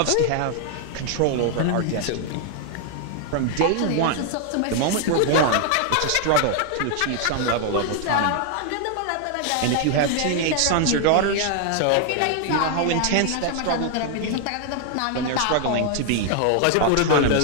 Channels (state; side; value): different; both; correlation 0.00